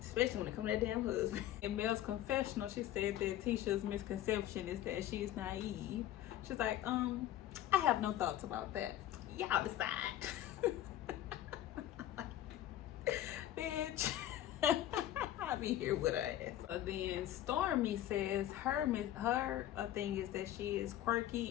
Especially when it comes to that damn husband. In Mel's confessional, she said that Tisha's misconception is that she's naive. She's like, I have no thoughts about that. Y'all decide. Bitch. I'll be here with her ass. So then Stormy says her thing is that she is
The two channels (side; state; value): right; quieter; 12.9 dB